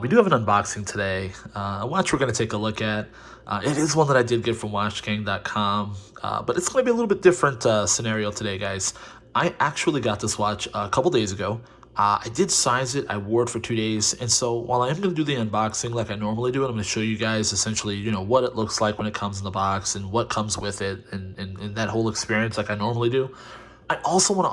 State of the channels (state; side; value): identical; both; correlation 1.00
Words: We do have an unboxing today. A watch we're going to take a look at. It is one that I did get from WatchGang.com, but it's going to be a little bit different scenario today, guys. I actually got this watch a couple days ago. I did size it, I wore it for 2 days, and so while I am going to do the unboxing like I normally do, and I'm going to show you guys essentially, what it looks like when it comes in the box and what comes with it and that whole experience like I normally do, I also want to